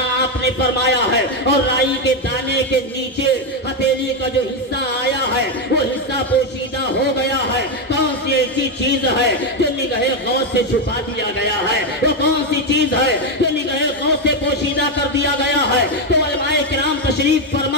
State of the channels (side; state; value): both; normal; correlation 0.07